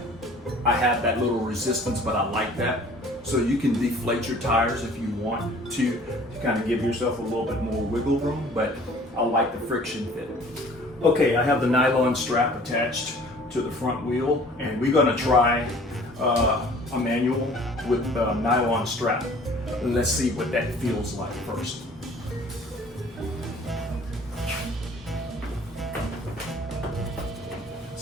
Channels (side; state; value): both; normal; correlation 0.51